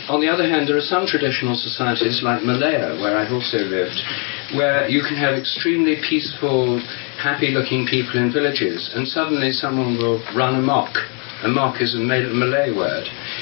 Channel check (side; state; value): right; quieter; 38.0 dB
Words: On the other hand, there are some traditional societies, like Malaya, where I've also lived, where you can have extremely peaceful, happy-looking people in villages, and suddenly someone will run amok. Amok is a Malay word.